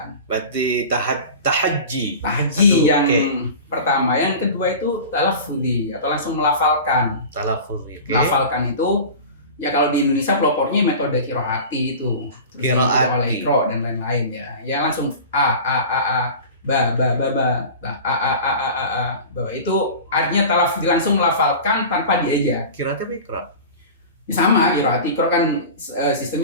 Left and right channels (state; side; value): inverted; both; correlation -0.35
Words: Berarti tahajji yang pertama, yang kedua itu talaffuzi atau langsung melafalkan. Melafalkan itu ya kalau di Indonesia pelopornya metode qiraati itu. Qiraati dan lain-lain ya. Ya langsung a ba itu artinya talaffuzi langsung melafalkan tanpa dieja. Qiraati apa iqra? Sama qiraati, iqra kan